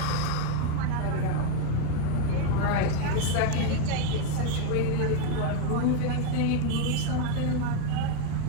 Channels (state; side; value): different; both; correlation 0.02